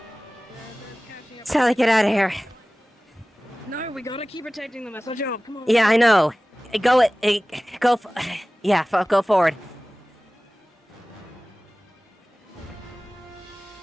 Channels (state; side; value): normal; both; correlation 0.98